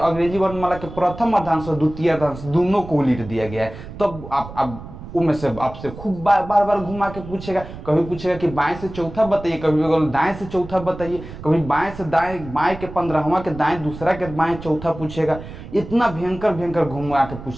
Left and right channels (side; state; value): right; noise; rumble, 13 dB below the sound